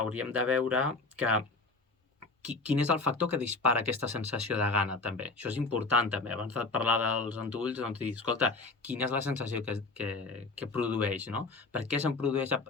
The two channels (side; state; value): right; quieter; 3.8 dB